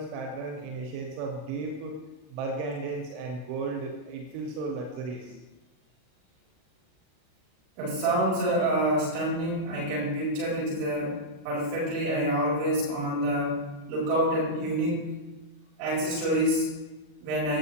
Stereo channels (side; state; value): left; late; 40 ms